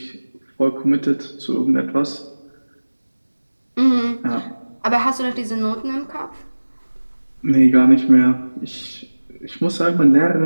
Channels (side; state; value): both; inverted; correlation -1.00